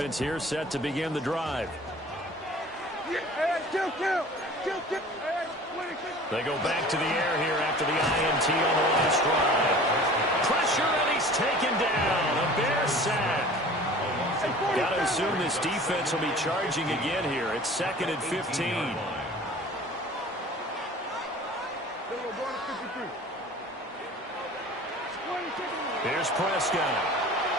here set to begin the drive. They go back to the air here after the INT on the last drive. Pressure, and he's taken down. A Bear sack. Got to assume this defense will be charging again here. It's 2nd and 15. Here's Prescott.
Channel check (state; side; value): normal; both; correlation 0.44